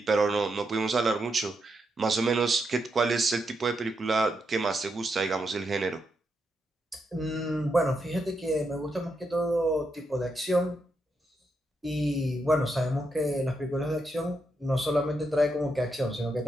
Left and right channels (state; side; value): normal; both; correlation 0.82